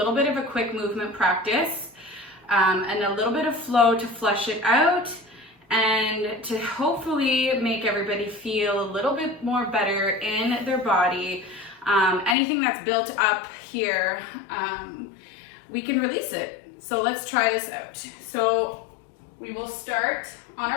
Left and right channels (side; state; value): right; drops out; at 12.4 s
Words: bit of a quick movement practice and a little bit of flow to flush it out and to hopefully make everybody feel a little bit more better in their body. Anything that's built up here, we can release it. So let's try this out. So we will start on